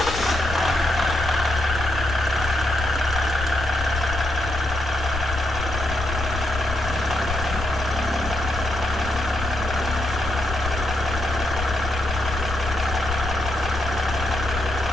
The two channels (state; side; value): noise; left; rumble, 6 dB below the sound